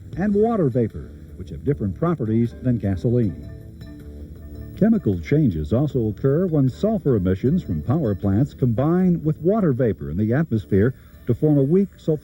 and water vapor, which have different properties than gasoline. Chemical changes also occur when sulfur emissions from power plants combine with water vapor in the atmosphere to form a weak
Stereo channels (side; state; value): both; identical; correlation 1.00